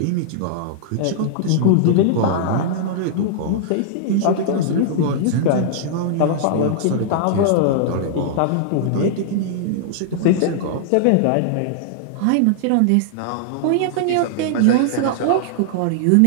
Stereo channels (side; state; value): both; different; correlation -0.01